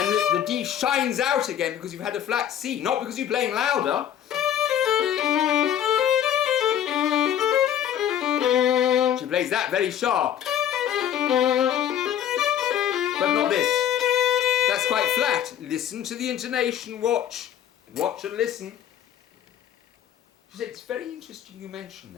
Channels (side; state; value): right; quieter; 10.2 dB